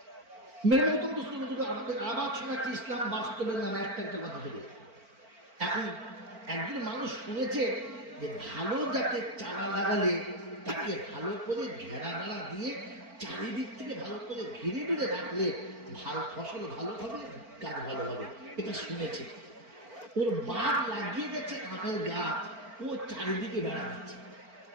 মেরে মতো আমাদের আবার শোনাচ্ছে ইসলাম বাস্তবের নামে একটা একটা কথা বলে। এখন একজন মানুষ শুনেছে যে ভালো জাতের চারা লাগালে তাকে ভালো করে ঘেরা বেড়া দিয়ে চারিদিক থেকে ভালো করে ঘিরে ঘিরে রাখলে ভালো ফসল ভালো হবে, গাছ ভালো হবে, এটা শুনেছে। ওর বাপ লাগিয়ে গেছে আমের গাছ, ও চারিদিকে বেড়া দিচ্ছে।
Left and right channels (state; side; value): late; left; 4.4 ms